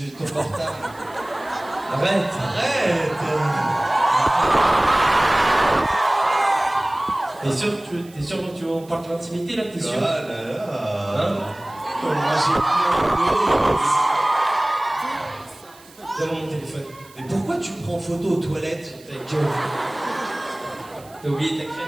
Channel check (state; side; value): noise; right; hiss, 25 dB below the sound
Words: ton portable. Arrête. T'es sûr que tu on parle de l'intimité là? T'es sûr? Ah là là. Hein? Donne-moi mon téléphone. Mais pourquoi tu me prends en photo aux toilettes? Ta gueule. T'as oublié ta